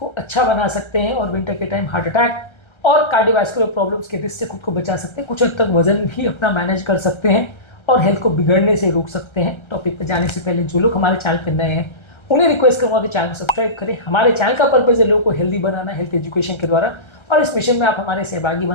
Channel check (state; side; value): late; right; 1.3 ms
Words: अच्छा बना सकते हैं और विंटर के टाइम हार्ट अटैक और कार्डियोवैस्कुलर प्रॉब्लम्स के रिस्क से खुद को बचा सकते हैं। कुछ हद तक वजन भी अपना मैनेज कर सकते हैं और हेल्थ को बिगड़ने से रोक सकते हैं। टॉपिक पर जाने से पहले जो लोग हमारे चैनल पर नए हैं उन्हें रिक्वेस्ट करूँगा कि चैनल को सब्सक्राइब करें। हमारे चैनल का पर्पज है लोगों को हेल्दी बनाना, हेल्थ एजुकेशन के द्वारा, और इस मिशन में आप हमारे सहभागी